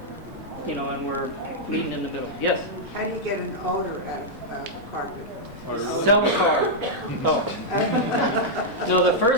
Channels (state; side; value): noise; left; rumble, 20 dB below the sound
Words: and we're meeting in the middle. Yes? How do you get an odor out of carpet? Sell a car. Oh. No, the